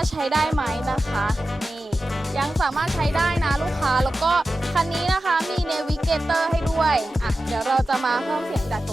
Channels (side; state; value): both; normal; correlation 0.93